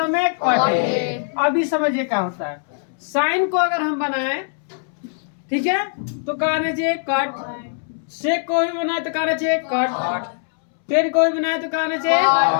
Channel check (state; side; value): silent; right; 65 dB below the other